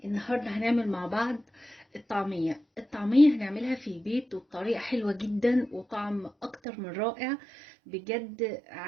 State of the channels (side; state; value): left; drops out; at 6.6 s